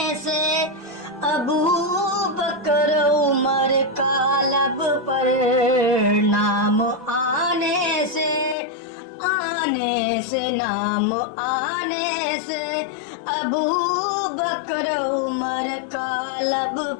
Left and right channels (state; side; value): drops out; right; at 8.6 s